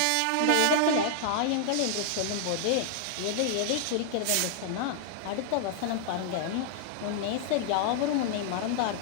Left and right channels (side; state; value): both; different; correlation -0.01